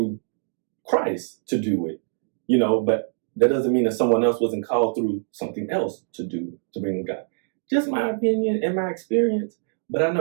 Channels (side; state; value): left; silent; digital silence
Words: Christ to do it, but that doesn't mean that someone else wasn't called through something else to bring God. Just my opinion and my experience, but I